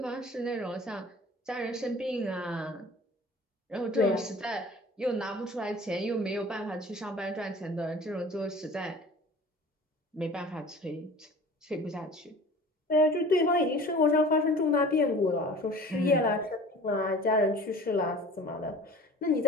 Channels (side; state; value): both; normal; correlation 0.43